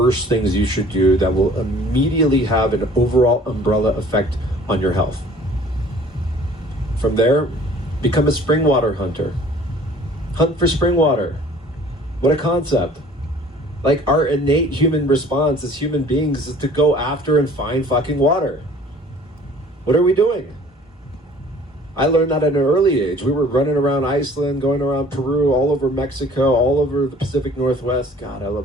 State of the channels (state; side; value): normal; both; correlation 0.51